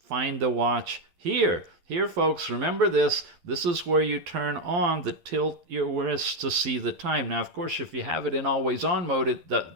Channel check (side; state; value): left; late; 12 ms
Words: the watch. Here, folks, remember this. This is where you turn on the tilt your wrist to see the time. Now, of course, if you have it in always on mode, it